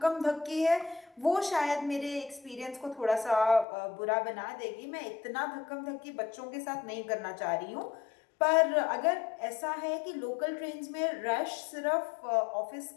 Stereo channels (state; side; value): drops out; right; at 3.7 s